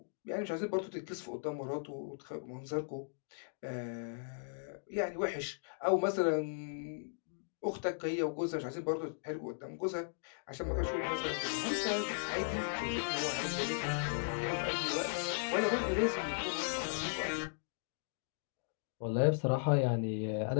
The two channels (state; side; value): silent; right; digital silence